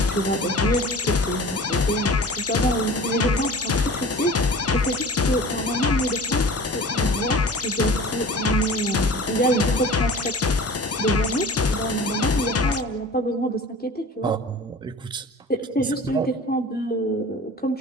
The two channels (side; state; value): both; normal; correlation 0.41